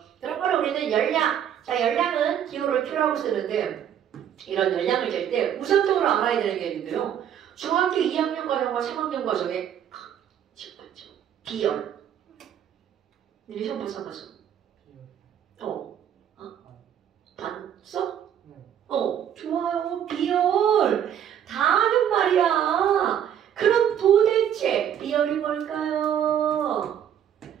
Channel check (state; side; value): quieter; left; 9.5 dB